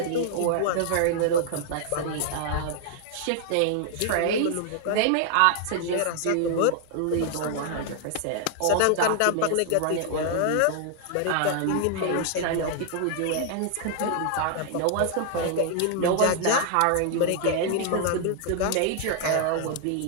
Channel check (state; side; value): different; both; correlation 0.00